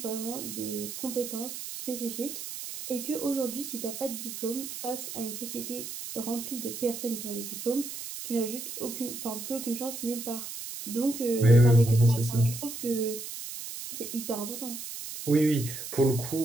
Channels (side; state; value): right; noise; hiss, 8 dB below the sound